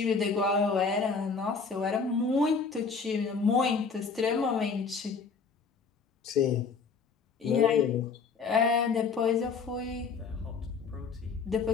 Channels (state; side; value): quieter; right; 5.2 dB